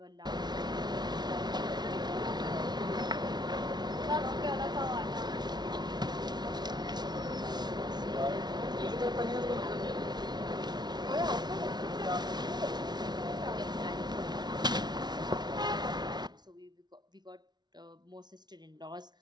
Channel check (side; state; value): left; late; 0.20 ms